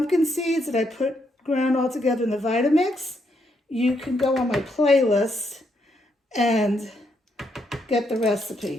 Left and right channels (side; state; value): both; normal; correlation 0.77